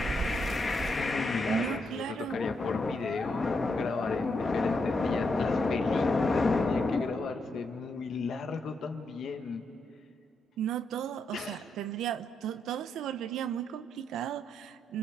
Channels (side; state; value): both; normal; correlation 0.80